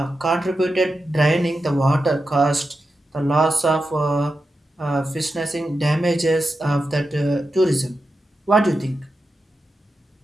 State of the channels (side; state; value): both; normal; correlation 0.90